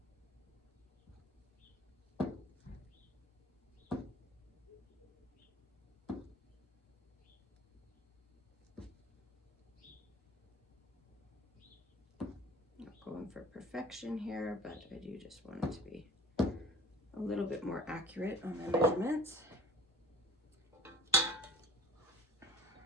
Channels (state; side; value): normal; both; correlation 0.44